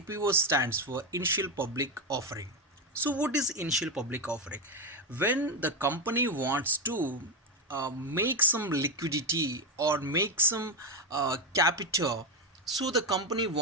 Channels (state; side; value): normal; both; correlation 0.09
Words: stands for initial public offering. So what is initial public offering? When the company wants to make some liquidity or make some capital, so the company